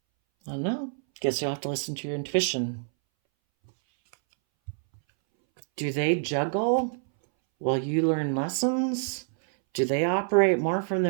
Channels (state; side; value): silent; left; 60 dB below the other